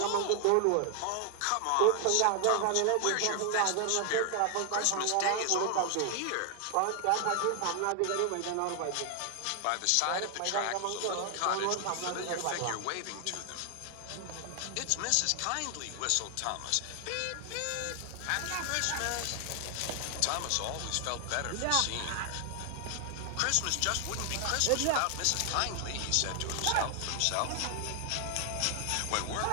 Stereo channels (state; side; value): different; both; correlation 0.00